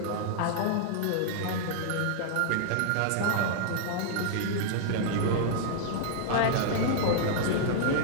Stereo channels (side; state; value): both; different; correlation -0.01